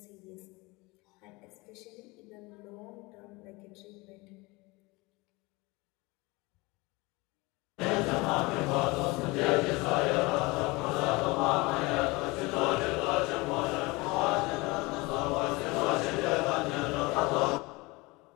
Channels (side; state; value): right; quieter; 24.1 dB